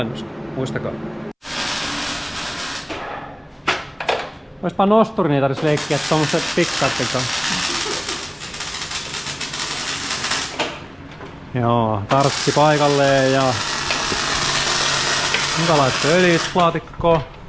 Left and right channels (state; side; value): identical; both; correlation 1.00